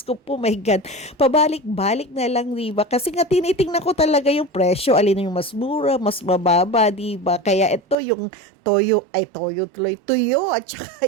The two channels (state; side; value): drops out; left; at 8.0 s